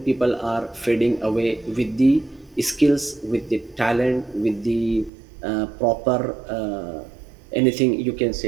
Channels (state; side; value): drops out; left; at 5.1 s